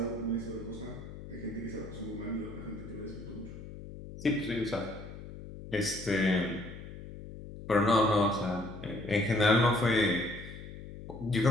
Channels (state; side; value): noise; left; hum, 12 dB below the sound